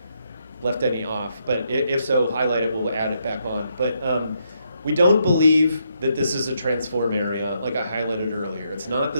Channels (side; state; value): both; inverted; correlation -0.77